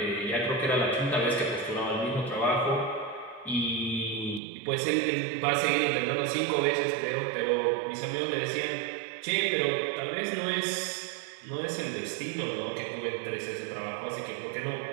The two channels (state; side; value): drops out; left; at 4.4 s